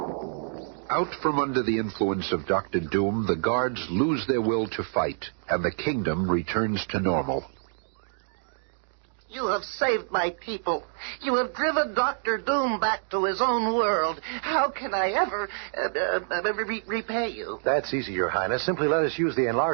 Out from under the influence of Dr. Doom, the guards lose their will to fight, and the kingdom returns to normal. You have saved my people. You have driven Dr. Doom back to his own world. How can I ever repay you? That's easy, Your Highness. Simply let us use the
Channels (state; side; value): silent; left; digital silence